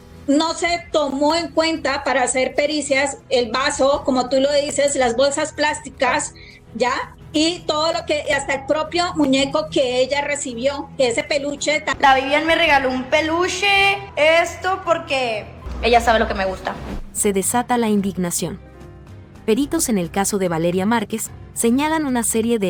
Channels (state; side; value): identical; both; correlation 1.00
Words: No se tomó en cuenta para hacer pericias el vaso, como tú lo dices, las bolsas plásticas, ¿ya? Y todo lo que, hasta el propio muñeco que ella recibió, que ese peluche. La Vivian me regaló un peluche, esto porque ella sabe lo que me gusta. Se desata la indignación. Peritos en el caso de Valeria Márquez señalan una serie